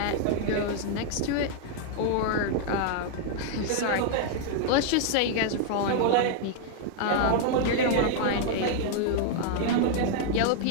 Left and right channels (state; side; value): different; both; correlation 0.00